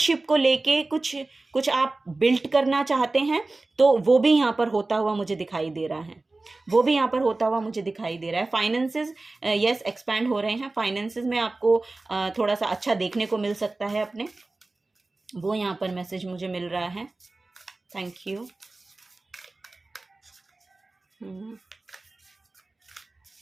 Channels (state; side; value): quieter; left; 3.2 dB